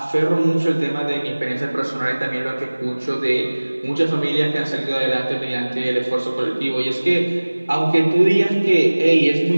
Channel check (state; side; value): inverted; both; correlation -1.00